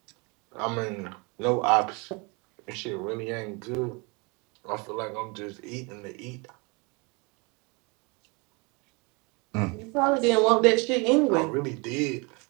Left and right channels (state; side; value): quieter; left; 29.8 dB